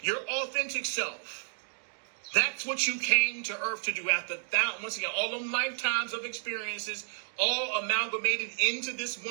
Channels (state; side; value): silent; left; digital silence